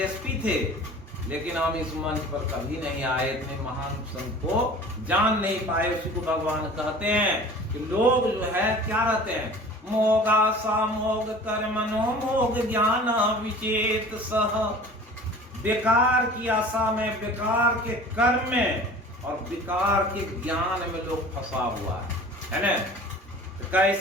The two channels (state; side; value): normal; both; correlation 0.43